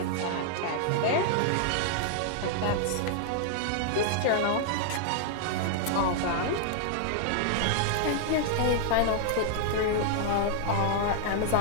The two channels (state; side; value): different; both; correlation -0.01